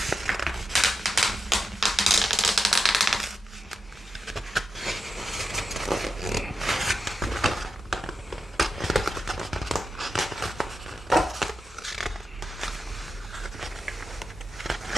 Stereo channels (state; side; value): normal; both; correlation 0.88